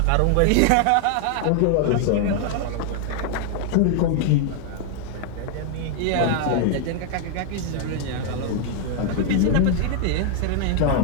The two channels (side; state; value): both; different; correlation 0.00